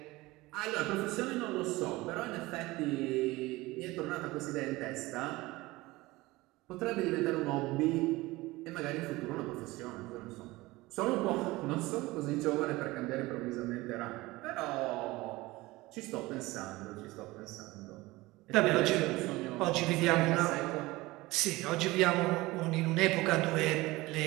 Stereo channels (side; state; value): left; quieter; 20.4 dB